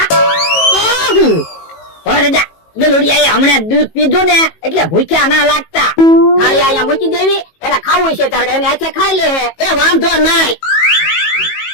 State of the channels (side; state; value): right; late; 18 ms